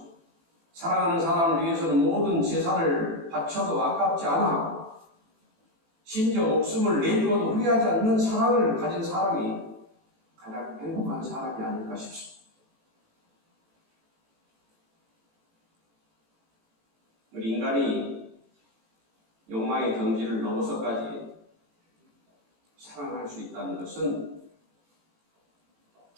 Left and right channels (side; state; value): left; late; 18 ms